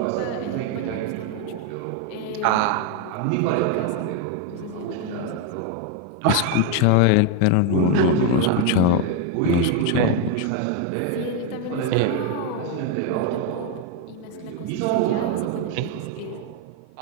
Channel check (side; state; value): both; different; correlation 0.01